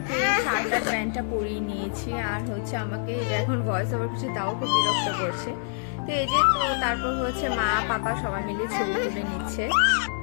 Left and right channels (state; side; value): silent; right; 60 dB below the other